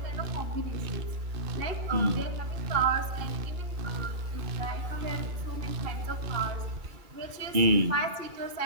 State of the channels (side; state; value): left; late; 2.3 ms